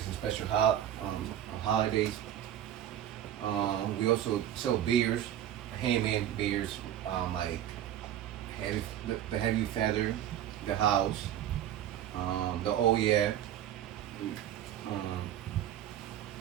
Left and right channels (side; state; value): left; quieter; 11.2 dB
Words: and special holidays. We also sell beers, handmade beers, like the Heavy Feather, the House, the Oh Yeah.